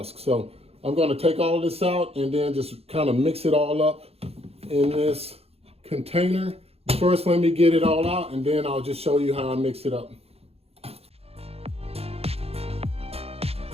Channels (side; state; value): left; late; 0.29 ms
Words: So I'm going to take all of this out and then just kind of mix it all up in this container. First, let me get it all out, and then I'll just show you how I mix it up.